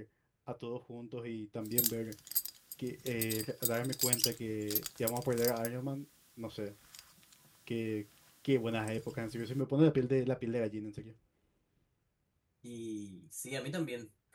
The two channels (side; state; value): both; identical; correlation 1.00